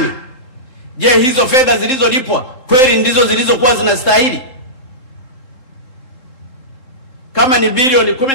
Je, hizo fedha zilizolipwa kweli ndizo zilizokuwa zinastahili? Kama ni bilioni 10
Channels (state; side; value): late; right; 3.8 ms